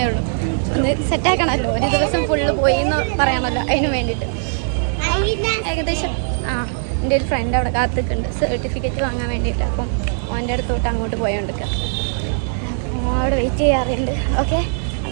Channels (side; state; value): left; silent; 66 dB below the other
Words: ഉള്ളൂ. ഒന്ന് സെറ്റാക്കണമല്ലോ, ഒരു ദിവസം ഫുള്ള് പോയി എന്ന് പറയണമല്ലോ, അതിന് വേണ്ടിയിട്ട്. ഏകദേശം എൻ്റെ ഒരു ഫ്രണ്ട് അവിടെ കാത്തിക്കുന്നുണ്ട് സർട്ടിഫിക്കറ്റ് വാങ്ങാൻ വേണ്ടിയിട്ട്. അപ്പം അവൻ്റെ അടുത്തോട്ട് അങ്ങോട്ട് പോയോണ്ടിരിക്കുക, അപ്പോൾ അവിടെ വെയിറ്റ് ചെയ്യാറുണ്ട്. ഓക്കെ,